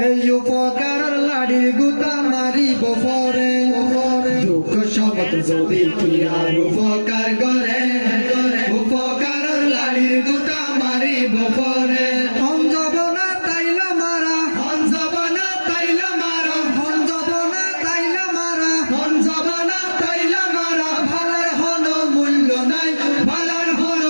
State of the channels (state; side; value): inverted; both; correlation -1.00